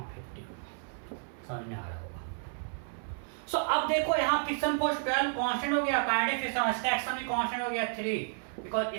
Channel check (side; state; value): left; silent; 57 dB below the other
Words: 50 होगा। समझ में आ रहा होगा। सो अब देखो यहाँ फ्रिक्शन फोर्स 12 कांस्टेंट हो गया, काइनेटिक फ्रिक्शन इसका एक्शन भी कांस्टेंट हो गया 3, बिकॉज